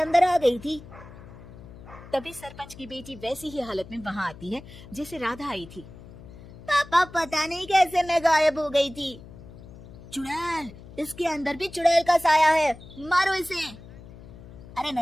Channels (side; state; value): left; noise; hum, 17 dB below the sound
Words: आ गई थी। तभी सरपंच की बेटी वैसी ही हालत में वहां आती है जैसे राधा आई थी। पापा, पता नहीं कैसे मैं गायब हो गई थी। चुड़ैल, इसके अंदर भी चुड़ैल का साया है, मारो इसे। अरे